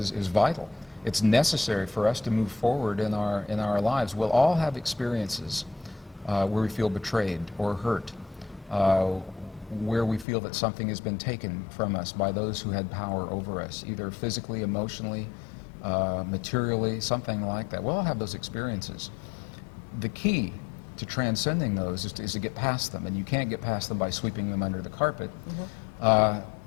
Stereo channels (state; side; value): drops out; right; at 10.2 s